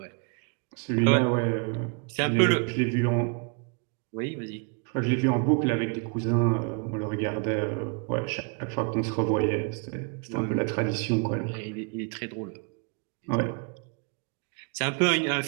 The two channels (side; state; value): left; quieter; 36.6 dB